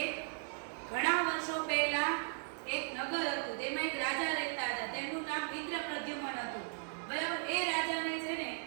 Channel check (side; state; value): left; silent; 53 dB below the other